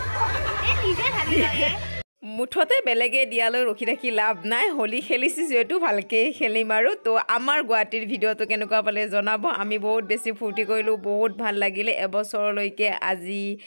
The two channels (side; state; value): both; inverted; correlation -1.00